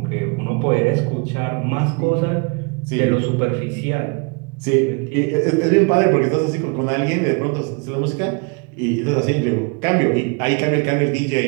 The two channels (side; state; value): left; quieter; 33.5 dB